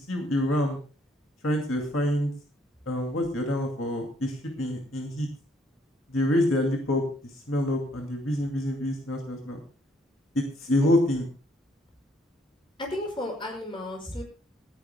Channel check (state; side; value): normal; both; correlation 0.67